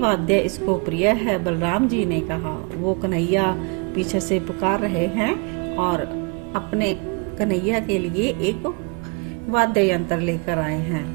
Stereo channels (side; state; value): left; quieter; 32.1 dB